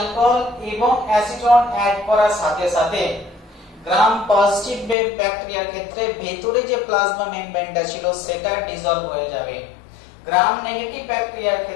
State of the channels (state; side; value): drops out; right; at 5.0 s